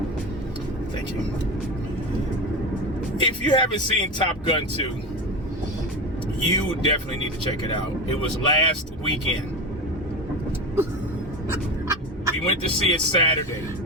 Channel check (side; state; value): both; normal; correlation 0.23